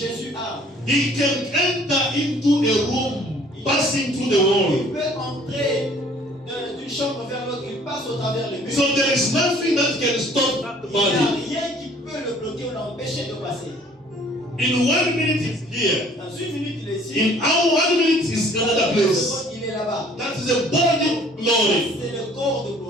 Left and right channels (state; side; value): normal; both; correlation 0.55